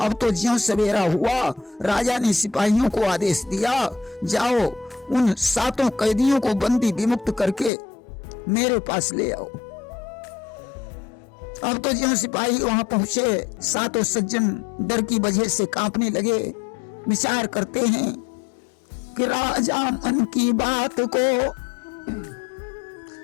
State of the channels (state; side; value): drops out; right; at 7.7 s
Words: अब तो ज्यों सवेरा हुआ, राजा ने सिपाहियों को आदेश दिया, जाओ उन 7 कैदियों को बंदी विमुक्त करके मेरे पास ले आओ। अब तो ज्यों सिपाही वहां पहुंचे, 7 सज्जन डर की वजह से कांपने लगे। विचार करते हैं कि राजा मन की बात को